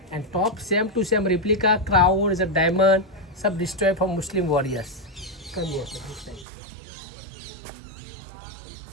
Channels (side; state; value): left; drops out; at 6.5 s